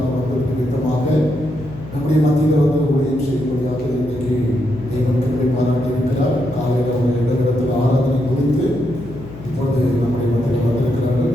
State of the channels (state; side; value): noise; left; hum, 14 dB below the sound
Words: வந்தது நிமித்தமாக நம்முடைய மத்தியில் வந்து ஊழியம் செய்யக்கூடியாக இன்றைக்கு தேவன் கிருபை பாராட்டி இருக்கிறார். காலையில் அவங்க இடத்தில் ஆராதனை முடித்து இப்பொழுது நம்முடைய மத்தியில் வந்திருக்கிறார்கள்.